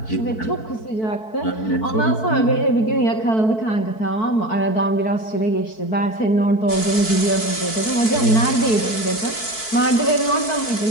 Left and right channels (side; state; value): right; late; 4.6 ms